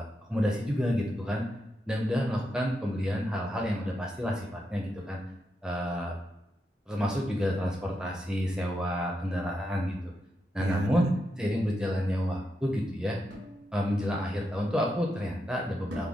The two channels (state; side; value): normal; both; correlation 0.84